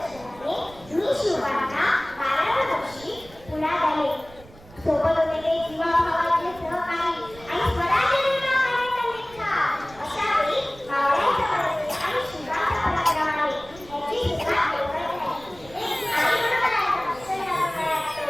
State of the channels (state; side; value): noise; right; rumble, 21 dB below the sound